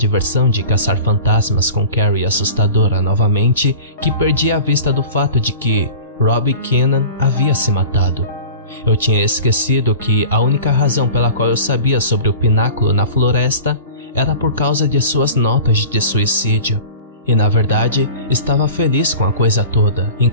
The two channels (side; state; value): both; inverted; correlation -0.39